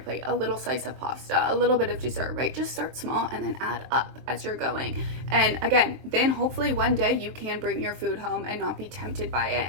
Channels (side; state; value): left; late; 23 ms